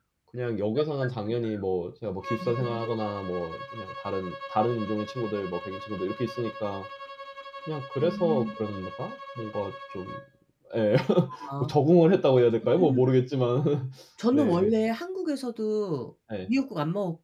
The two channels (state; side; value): identical; both; correlation 1.00